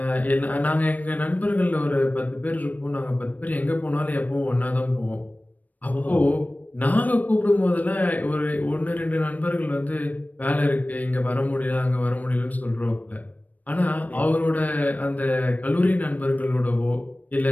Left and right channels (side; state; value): right; late; 0.078 ms